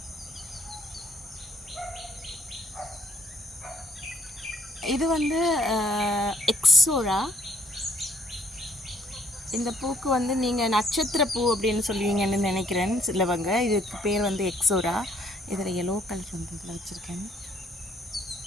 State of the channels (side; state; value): both; normal; correlation 0.66